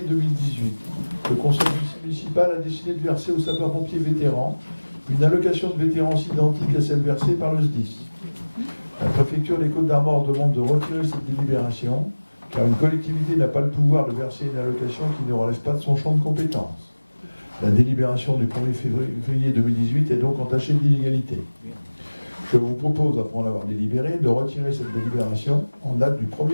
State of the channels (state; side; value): inverted; both; correlation -1.00